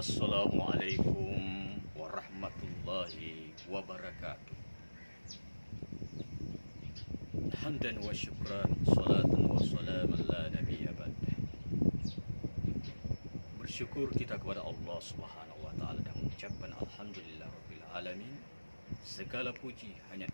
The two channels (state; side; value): inverted; both; correlation -1.00